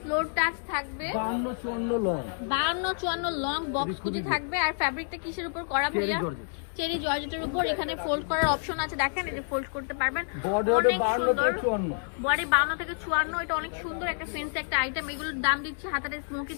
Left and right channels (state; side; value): silent; right; digital silence